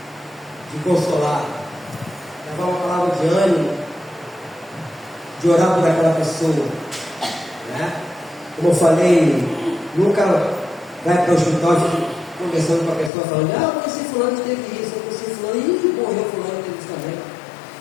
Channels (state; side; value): drops out; right; at 13.1 s